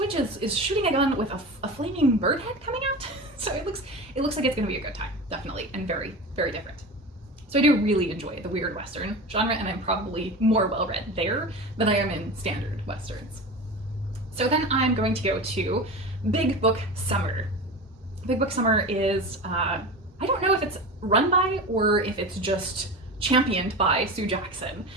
is shooting a gun with a flaming bird head coming out. So it looks like it's going to be a good time, definitely, and very, very different. So I do really enjoy the weird Western genre, and I'm probably more well-read there than I am in standard Westerns. So then I'm going to go to Big Book Summer. Big Book Summer is, I don't know if it's run by or if it's just championed by Sue Jackson,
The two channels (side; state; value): both; normal; correlation 0.29